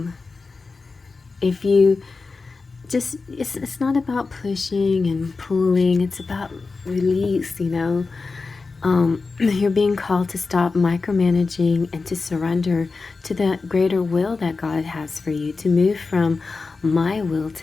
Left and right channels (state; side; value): quieter; right; 4.2 dB